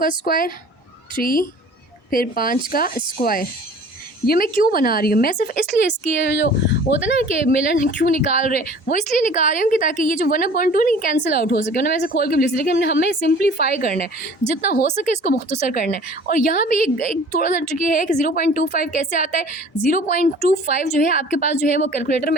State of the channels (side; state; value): both; normal; correlation 0.47